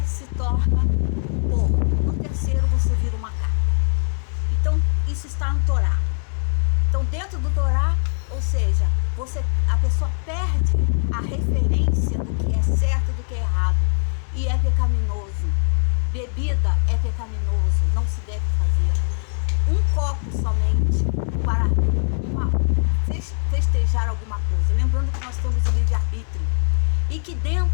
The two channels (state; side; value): silent; right; 64 dB below the other